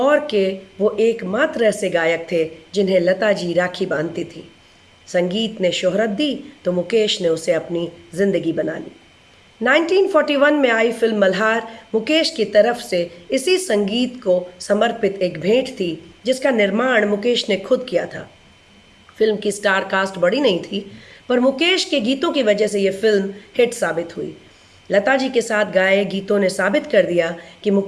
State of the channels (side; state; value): both; identical; correlation 1.00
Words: के वो एकमात्र ऐसे गायक थे जिन्हें लता जी राखी बांधती थी। संगीत ने शोहरत दी तो मुकेश ने उसे अपनी ज़िंदगी बना ली। 1941 में आई फिल्म मल्हार मुकेश की तरफ से इसी संगीत को समर्पित एक भेंट थी जिसका निर्माण मुकेश ने खुद किया था। फिल्म की स्टार कास्ट बड़ी नहीं थी, पर मुकेश के गीतों की वजह से ये फिल्म हिट साबित हुई। लता जी के साथ गाए गीतों ने साबित कर दिया कि